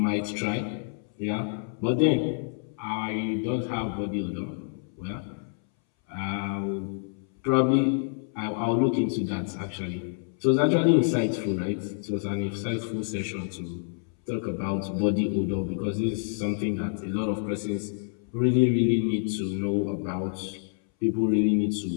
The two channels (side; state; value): right; silent; 60 dB below the other